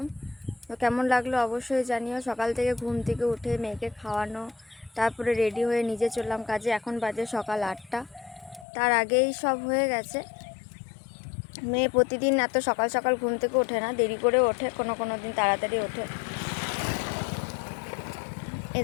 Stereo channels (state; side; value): drops out; right; at 8.7 s